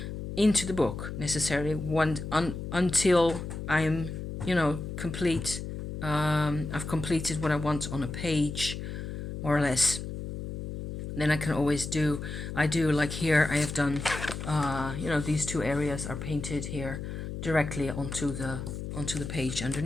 into the book necessarily until I'm, complete. I've completed what I want on a page, more or less. Then I can always I do like here I have done, these two areas are painted here directly onto the page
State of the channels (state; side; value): noise; left; hum, 7 dB below the sound